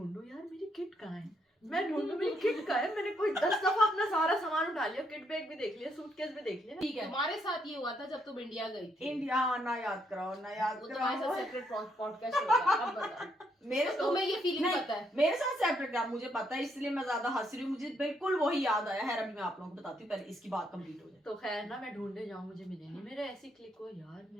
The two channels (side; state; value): both; normal; correlation 0.74